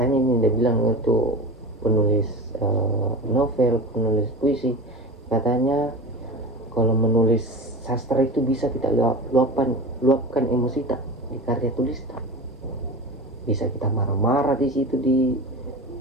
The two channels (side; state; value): both; normal; correlation 0.30